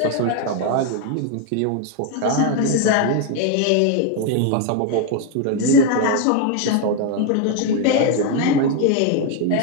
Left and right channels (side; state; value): both; different; correlation 0.01